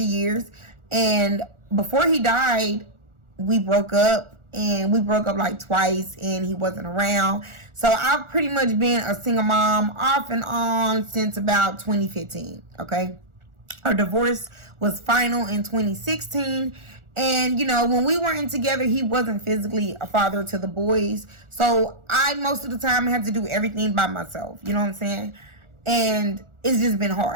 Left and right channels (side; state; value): left; late; 1.4 ms